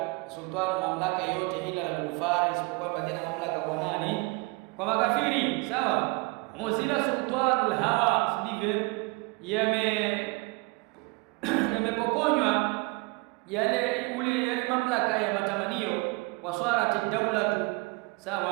sultan, mamlaka yote, ila al-kufar, isipokuwa baadhi ya mamlaka kwa nani? Kwa makafiri, sawa. Muzila sultanul hawa, si ndivyo? Yamepokonywa yale mamlaka ya matamanio. Waswarati dawlatu,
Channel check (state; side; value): quieter; left; 26.6 dB